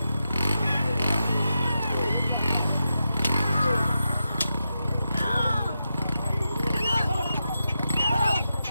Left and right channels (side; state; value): both; inverted; correlation -0.88